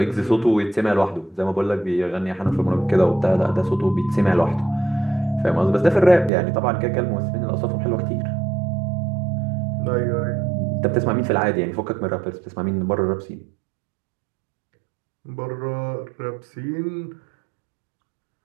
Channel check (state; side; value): drops out; left; at 6.3 s